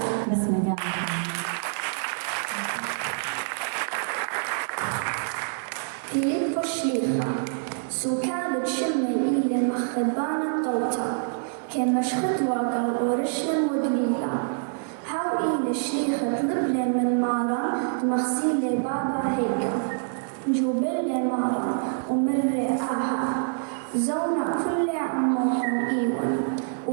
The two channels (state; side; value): silent; left; digital silence